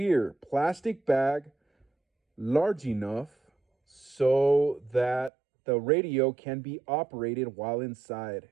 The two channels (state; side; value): drops out; left; at 5.3 s